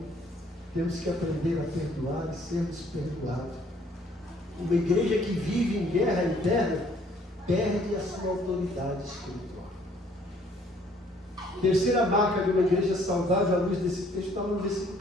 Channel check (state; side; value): normal; both; correlation 0.61